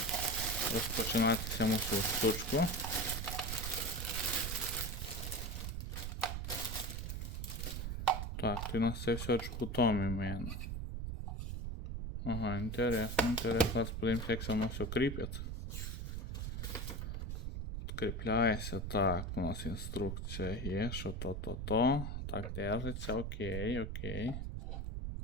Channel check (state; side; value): noise; right; rumble, 4 dB below the sound